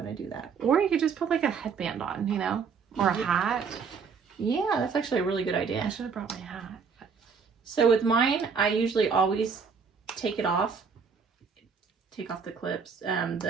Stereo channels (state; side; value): quieter; left; 5.8 dB